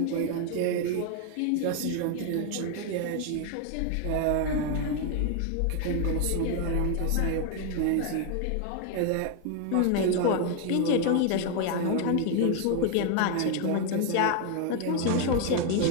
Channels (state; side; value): different; both; correlation 0.01